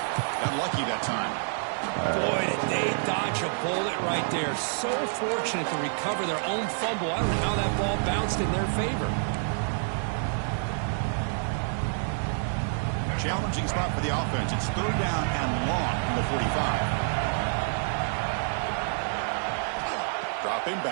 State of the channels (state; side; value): silent; left; 59 dB below the other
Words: Got lucky that time. Boy, did they dodge a bullet right there. So fortunate to recover their own fumble. I don't know how that ball bounced in their favor. Challenging spot for the offense. It's 3rd down and long from the 45. Dropping